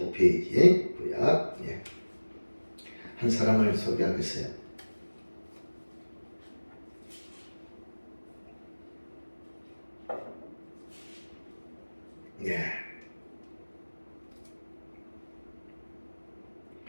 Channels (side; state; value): both; inverted; correlation -1.00